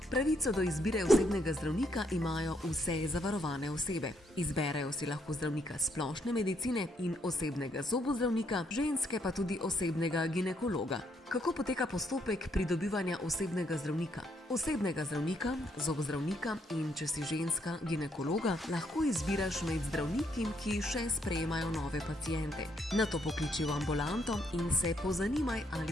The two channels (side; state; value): both; normal; correlation 0.73